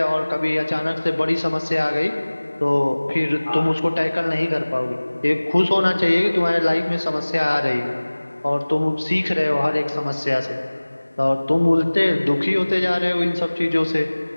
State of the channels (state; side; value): inverted; both; correlation -1.00